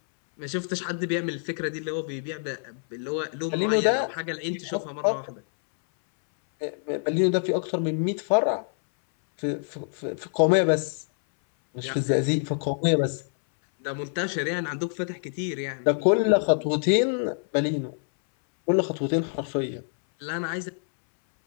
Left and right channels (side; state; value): right; silent; 60 dB below the other